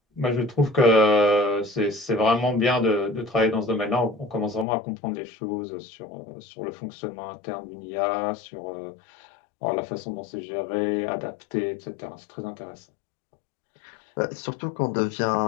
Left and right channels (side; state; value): right; drops out; at 4.7 s